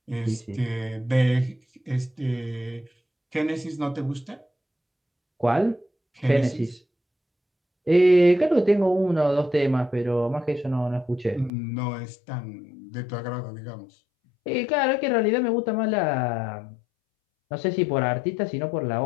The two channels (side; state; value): right; drops out; at 11.5 s